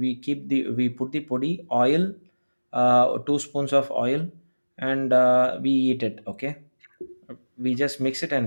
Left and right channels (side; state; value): both; inverted; correlation -1.00